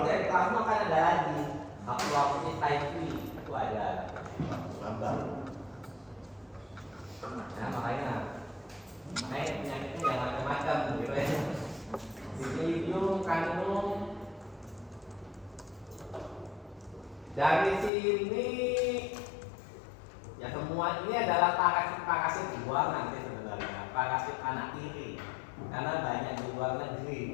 dari plasma kan ada lagi Haploides type V, itu ada. Nambah. Nah, makanya penyakitnya jangan macam-macam gitu ya. Bipilidium, Caninum. Dari sini ya semua ini adalah parasit luar nanti sebenarnya, parasit anak tiri, karena banyak di luar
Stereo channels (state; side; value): drops out; right; at 17.9 s